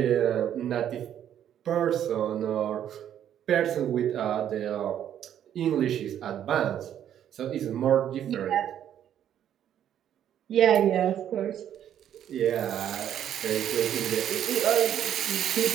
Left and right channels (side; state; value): left; quieter; 10.2 dB